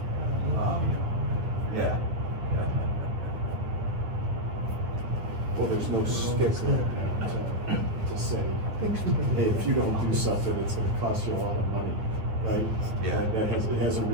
Yeah. Well, there's no stick to say, hey, if you don't do something, it's gonna cost you a lot of money, right? Yeah. It hasn't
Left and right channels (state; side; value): late; left; 9.5 ms